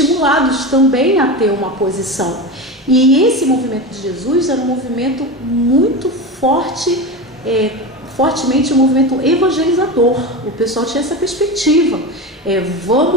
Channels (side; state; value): both; normal; correlation 0.23